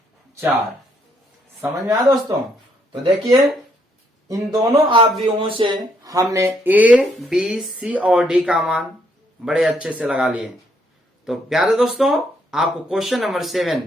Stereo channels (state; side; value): normal; both; correlation 0.72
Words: 4। समझ में आया दोस्तों। तो देखिए इन दोनों अवयवों से हमने ए बी सी और डी का मान बड़े अच्छे से लगा लिए। तो प्यारे दोस्तों आपको क्वेश्चन नंबर 7